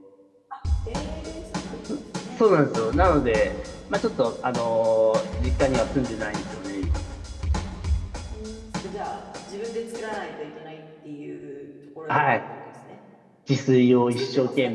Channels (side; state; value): both; identical; correlation 1.00